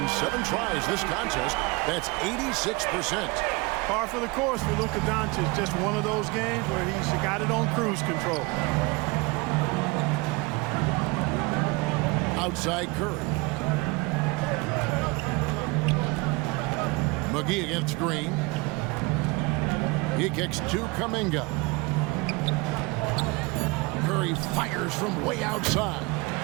7 tries this contest. That's 86%. Par for the course for Luka Doncic. Just one of those games where he's got it on cruise control. Outside Curry. McGee against Green. He kicks to Kuminga. Curry fires from way outside.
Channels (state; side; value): quieter; left; 25.6 dB